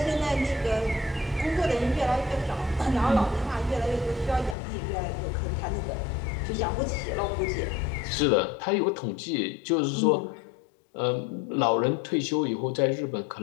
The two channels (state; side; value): drops out; right; at 4.5 s